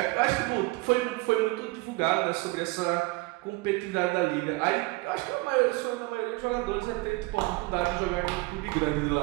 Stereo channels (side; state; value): left; quieter; 23.4 dB